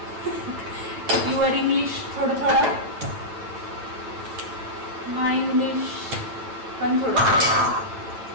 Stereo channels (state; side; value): late; left; 8.9 ms